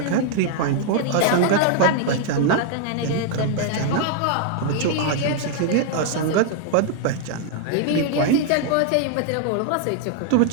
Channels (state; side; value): different; both; correlation 0.00